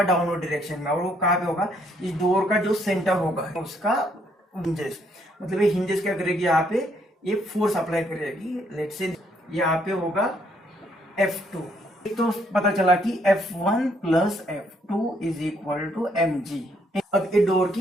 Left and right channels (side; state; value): both; normal; correlation 0.70